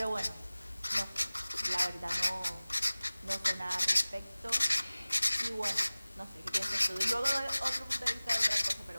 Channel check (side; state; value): both; inverted; correlation -0.99